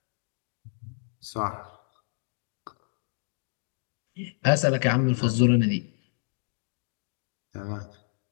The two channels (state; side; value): silent; right; digital silence